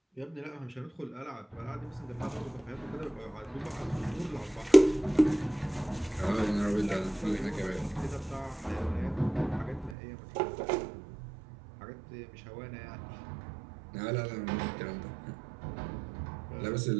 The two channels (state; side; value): drops out; left; at 10.0 s